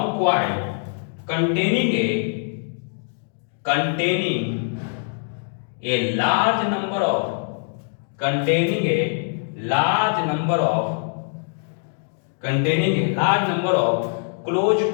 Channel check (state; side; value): silent; right; 63 dB below the other